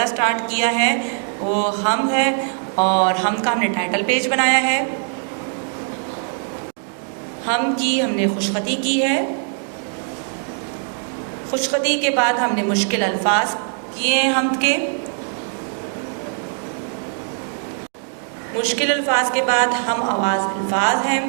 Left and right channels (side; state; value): left; silent; 57 dB below the other